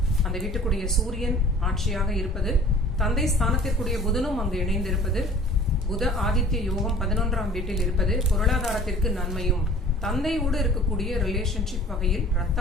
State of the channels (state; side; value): normal; both; correlation 0.48